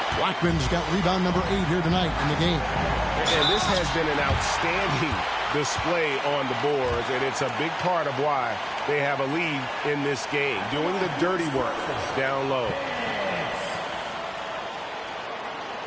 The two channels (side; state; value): both; identical; correlation 1.00